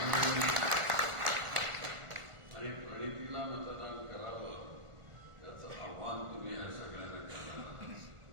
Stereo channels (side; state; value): left; late; 1.4 ms